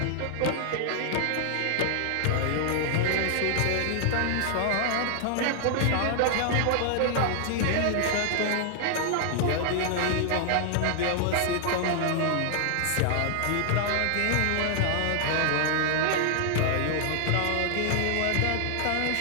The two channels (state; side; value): different; both; correlation 0.00